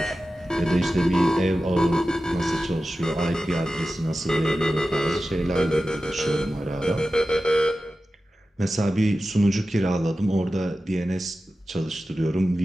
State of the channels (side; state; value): both; normal; correlation 0.94